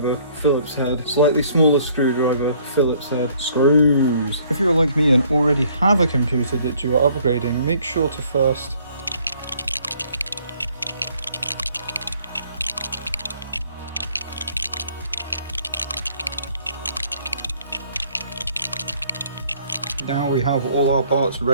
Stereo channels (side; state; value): both; inverted; correlation -0.61